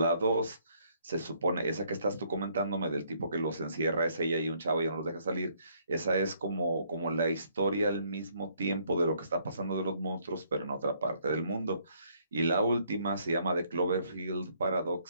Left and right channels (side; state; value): both; inverted; correlation -0.67